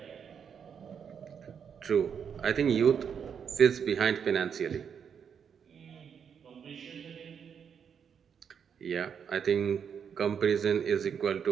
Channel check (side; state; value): left; quieter; 7.3 dB